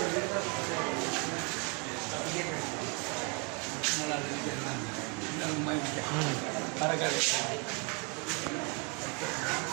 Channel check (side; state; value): left; quieter; 33.4 dB